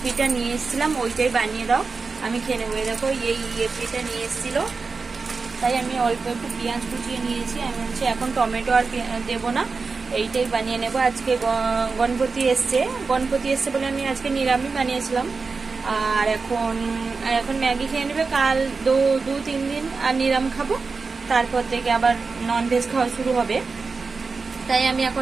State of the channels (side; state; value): left; quieter; 4.4 dB